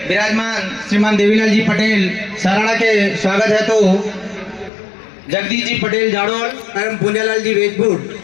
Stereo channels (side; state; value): right; drops out; at 4.7 s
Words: विराजमान श्रीमान देवीलाल जी पटेल सराड़ा के स्वागत है तो जगदीश जी पटेल जाड़ोल एवं पुंजालाल जी वेजपुर